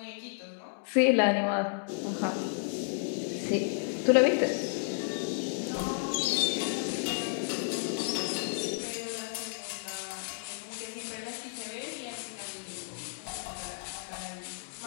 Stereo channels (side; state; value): right; silent; digital silence